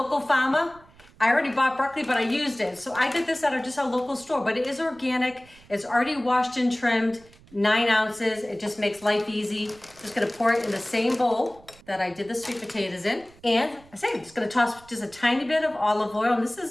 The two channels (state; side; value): noise; right; rumble, 26 dB below the sound